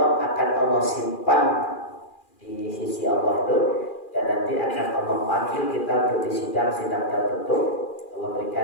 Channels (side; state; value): right; late; 2.4 ms